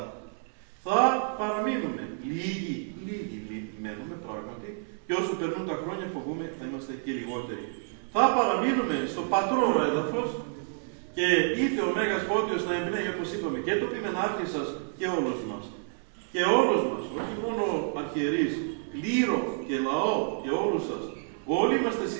Θα παραμείνουμε λίγοι μένουμε πράγματι, και όσο περνούν τα χρόνια φοβούμε θα είμαστε και λιγότεροι. Θα παραμείνουμε στο πατρό έδαφος και ήρθε ο Μέγας Φώτιος να εμπνέει, όπως είπαμε, και το ποιμενάρχη σας και όλους μας. Και όλους μας, όχι μόνο αρχιερείς, κλήρο και λαό και όλους σας. Όλοι είμαστε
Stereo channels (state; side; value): silent; left; digital silence